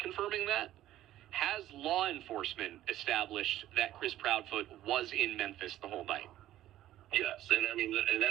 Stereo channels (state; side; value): quieter; left; 13.5 dB